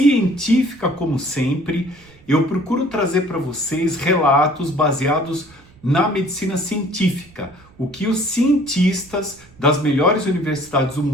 como sempre. Eu procuro trazer para vocês relatos baseados na medicina científica, o que os cientistas das melhores universidades do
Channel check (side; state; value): right; noise; rumble, 26 dB below the sound